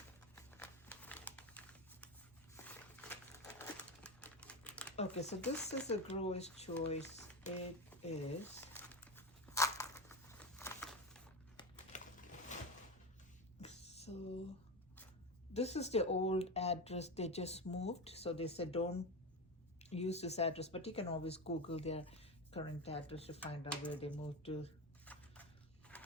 Okay, so this is a grower's choice. It is so this is the old address. They just moved, so they said don't use this address, but you can always Google their current address to find out where they moved to.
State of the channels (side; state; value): both; normal; correlation 0.19